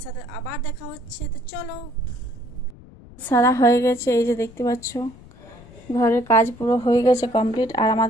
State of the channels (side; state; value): left; noise; rumble, 21 dB below the sound